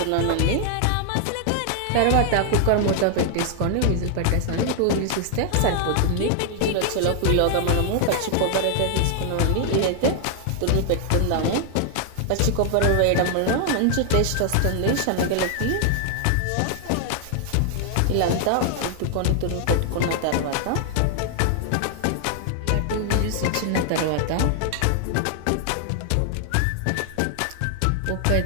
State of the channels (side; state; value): both; different; correlation 0.00